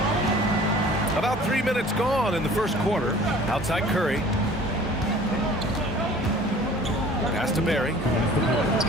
About 3 minutes gone in the first quarter. Outside Curry. Pass to Barry.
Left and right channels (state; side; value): normal; both; correlation 0.48